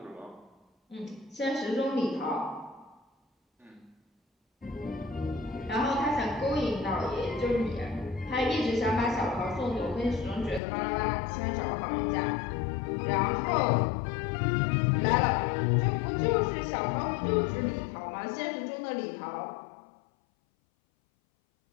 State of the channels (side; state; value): right; drops out; at 10.6 s